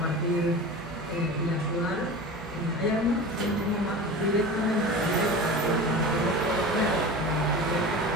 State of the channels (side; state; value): both; normal; correlation 0.33